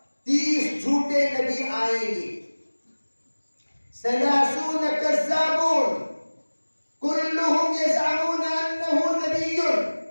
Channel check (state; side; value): inverted; both; correlation -1.00